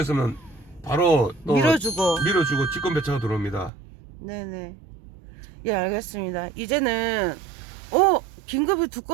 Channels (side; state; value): left; drops out; at 3.7 s